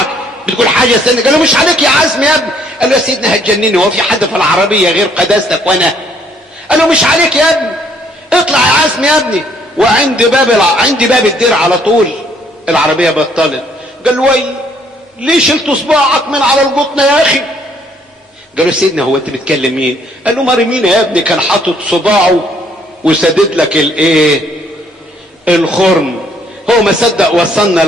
بتقول حاجه يا سيدنا؟ قال له مش عليك يا عزمي يا ابني. قال له يا سيدنا هتجنني، هو في حد في العربيه غير قداستك وانا؟ قال له مش عليك يا ابني، اطلع يا عزمي يا ابني. وعند باب الدير على طول العربيه بطلت. قال له وي ليه شلت صباعك من على القطنه يا اخي؟ قال له سيدنا هو انت بتكلم مين؟ قال له مريمين يا ابني كان حاطط صباعه وسدد لك الخرم. هو ما صدق وصلنا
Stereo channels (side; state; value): both; normal; correlation 0.65